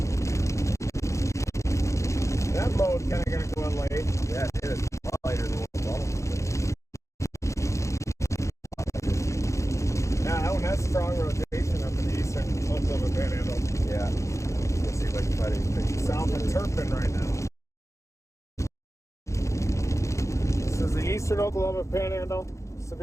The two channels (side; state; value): right; late; 0.15 ms